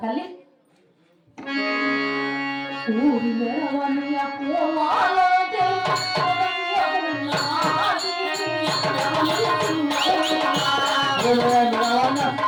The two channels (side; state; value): both; identical; correlation 1.00